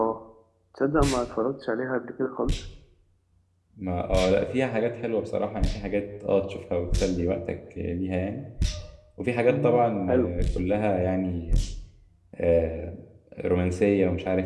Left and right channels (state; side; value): identical; both; correlation 1.00